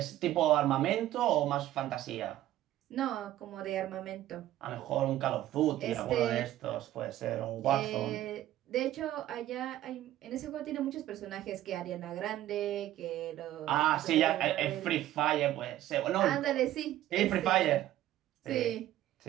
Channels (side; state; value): left; quieter; 13.8 dB